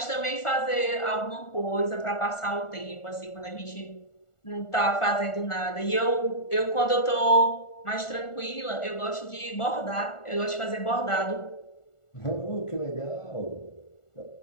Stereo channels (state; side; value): late; right; 1.4 ms